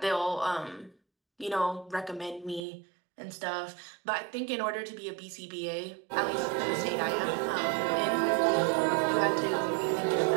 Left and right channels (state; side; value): drops out; left; at 2.7 s